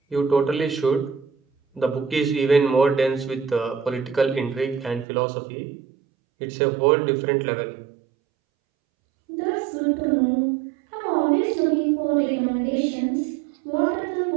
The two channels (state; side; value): drops out; left; at 5.1 s